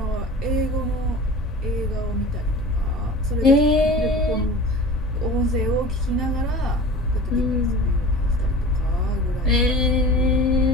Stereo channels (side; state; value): both; normal; correlation 0.38